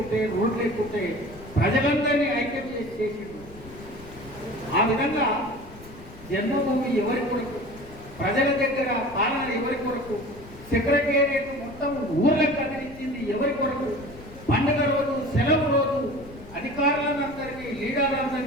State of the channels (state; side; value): noise; left; rumble, 18 dB below the sound